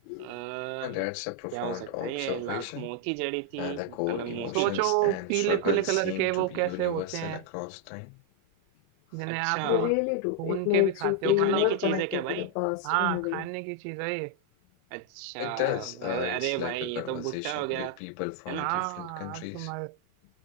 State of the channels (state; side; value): different; both; correlation 0.00